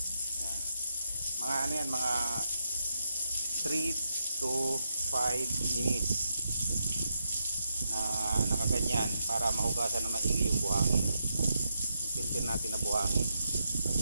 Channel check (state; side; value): inverted; both; correlation -0.81